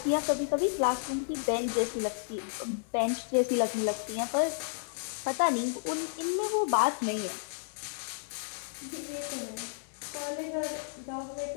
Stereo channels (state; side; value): silent; right; 57 dB below the other